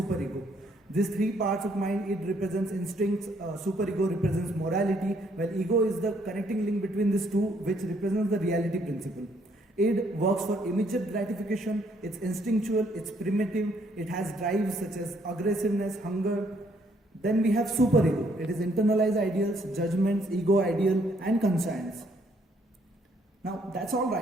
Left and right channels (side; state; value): both; normal; correlation 0.68